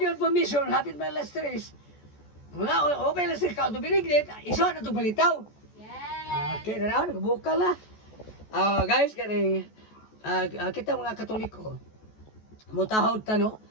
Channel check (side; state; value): right; late; 14 ms